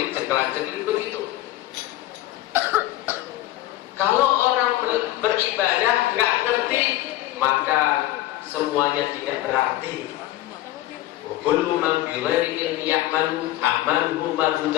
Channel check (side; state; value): right; quieter; 15.6 dB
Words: begitu. Kalau orang beribadah nggak ngerti, maka semuanya tidak berarti. Kullu man bi ghairi ilmi ya'malu amaluhu